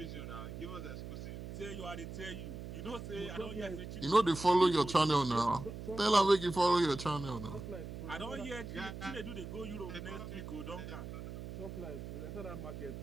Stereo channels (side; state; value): right; noise; hum, 9 dB below the sound